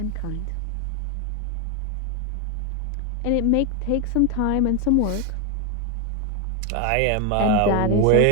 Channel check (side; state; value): both; different; correlation 0.01